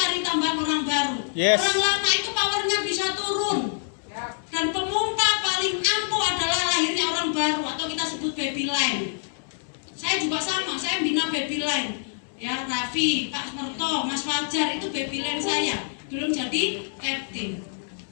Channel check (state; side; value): silent; right; digital silence